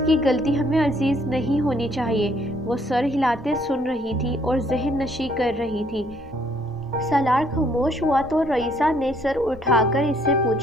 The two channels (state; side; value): noise; left; rumble, 26 dB below the sound